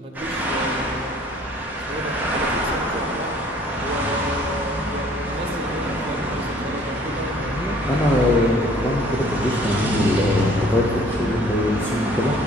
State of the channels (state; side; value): normal; both; correlation 0.56